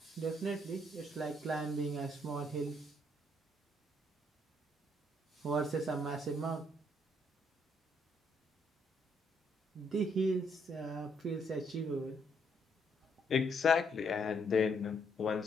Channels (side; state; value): both; normal; correlation 0.71